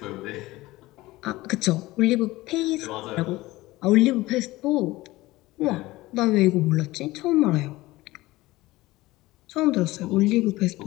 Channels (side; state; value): right; quieter; 18.9 dB